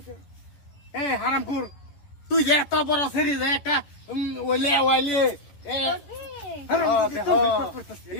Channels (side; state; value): right; late; 10 ms